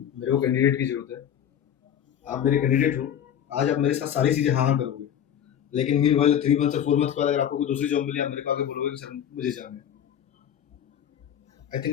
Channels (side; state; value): right; quieter; 9.5 dB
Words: को कैंडिडेट की जरूरत है, आप मेरे कैंडिडेट हो, आज आप मेरे साथ सारी चीजें हाँ हाँ करोगे, लेकिन मीन वाले 3 मंथ से 4 मंथ बाद अगर आपको कोई दूसरी जॉब मिली, आप मेरे को आगे बोलोगे कि सर मुझे जाना है, I